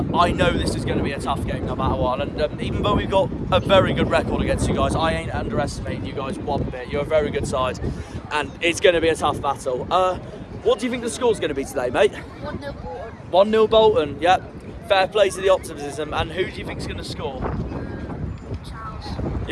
I know this is going to be a tough game no matter what. And even though we've got a very good record against you guys, I ain't underestimating you guys one bit. You're a very good side, and it's going to be a tough battle. What do you think the score's going to be today, mate? 1-0 Bolton. 1-0 Bolton, yep. Fair play to the optimism. And who do you think's going to score? Charles.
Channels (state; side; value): identical; both; correlation 1.00